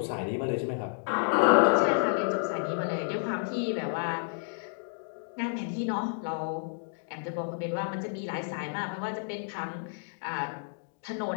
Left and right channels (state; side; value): silent; right; digital silence